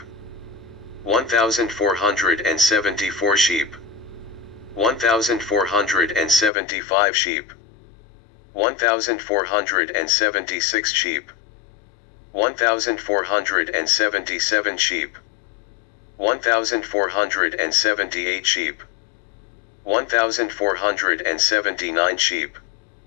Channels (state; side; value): drops out; right; at 6.5 s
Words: 1,474 sheep, 1,475 sheep, 1,476 sheep, 1,477 sheep, 1,478 sheep, 1,479 sheep,